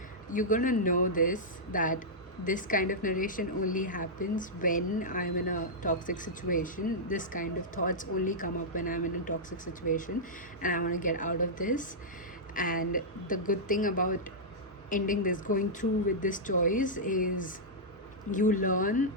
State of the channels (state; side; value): normal; both; correlation -0.10